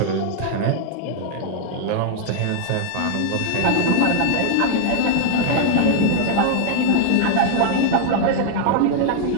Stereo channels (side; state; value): both; different; correlation 0.00